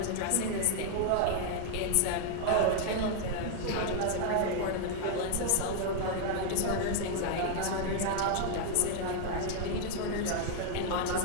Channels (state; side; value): different; both; correlation 0.00